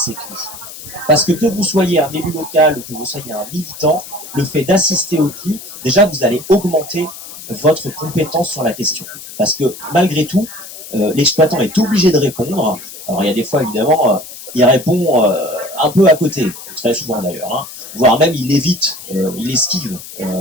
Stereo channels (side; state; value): left; noise; hiss, 14 dB below the sound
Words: CLI. Parce que vous soyez un élu local ou que vous soyez un militant, le fait d'assister au CLI, déjà vous allez augmenter votre compétence sur la question. Parce que malgré tout, l'exploitant est obligé de répondre. Alors il y a des fois évidemment, il répond un peu à côté, très souvent d'ailleurs, voire même il évite, il esquive